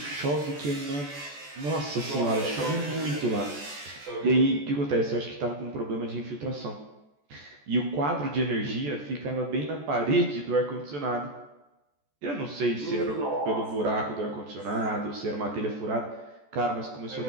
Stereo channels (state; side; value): late; left; 14 ms